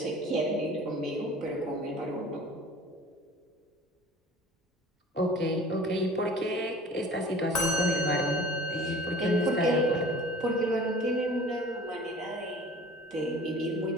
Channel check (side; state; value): both; normal; correlation 0.44